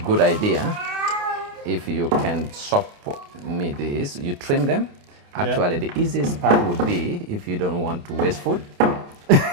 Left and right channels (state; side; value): late; left; 28 ms